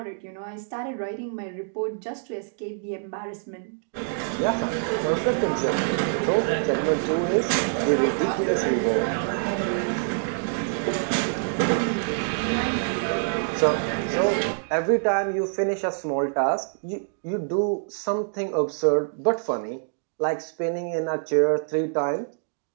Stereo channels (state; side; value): silent; left; digital silence